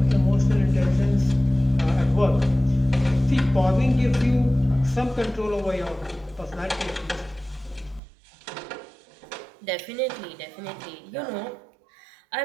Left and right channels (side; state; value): left; drops out; at 8.0 s